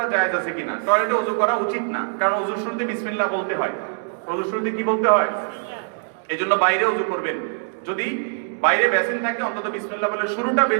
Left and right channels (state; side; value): silent; left; 64 dB below the other